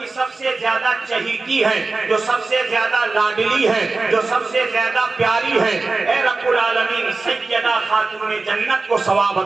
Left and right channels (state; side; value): quieter; left; 3.7 dB